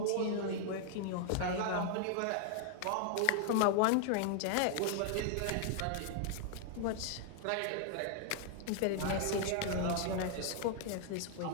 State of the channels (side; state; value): both; different; correlation 0.00